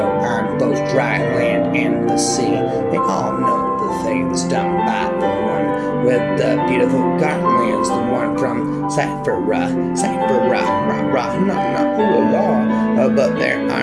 on both dry land and the sea. They all know the things done by the one with the beautiful garlands, the one from Cyphera, but there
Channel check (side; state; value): both; identical; correlation 1.00